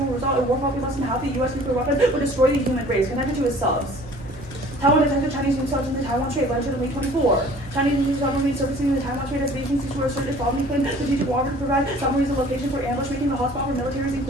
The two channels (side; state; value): right; noise; hum, 17 dB below the sound